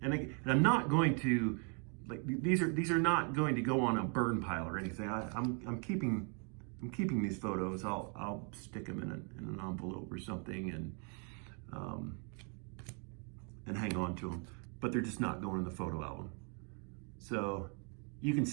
And I'm not going to, these are not going to go on a burn pile or anything. I'm keeping these photos. I'll stick them in an envelope or something and hang on to them, but they're just not going in the photo album. So you can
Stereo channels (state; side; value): quieter; left; 38.6 dB